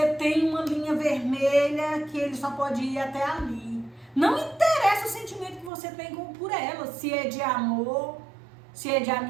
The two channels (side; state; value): left; drops out; at 5.7 s